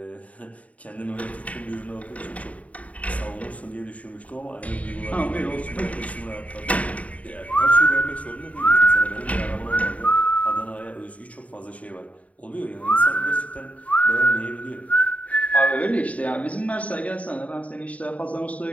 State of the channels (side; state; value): right; late; 0.068 ms